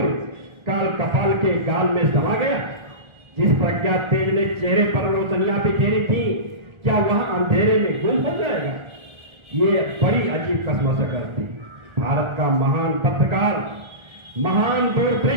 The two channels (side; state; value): left; late; 1.4 ms